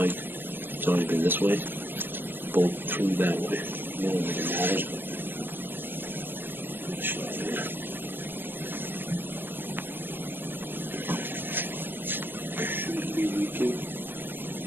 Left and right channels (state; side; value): late; left; 0.096 ms